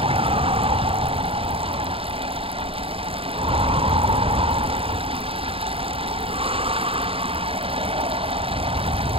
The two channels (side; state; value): left; late; 0.27 ms